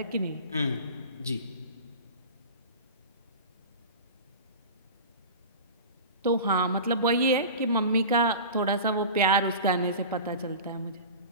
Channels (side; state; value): both; inverted; correlation -0.33